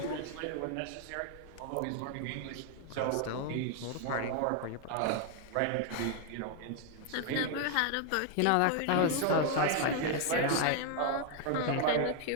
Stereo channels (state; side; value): different; both; correlation 0.00